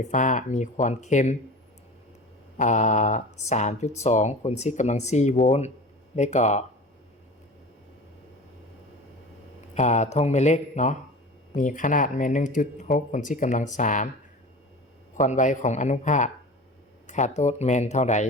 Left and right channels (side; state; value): both; normal; correlation 0.36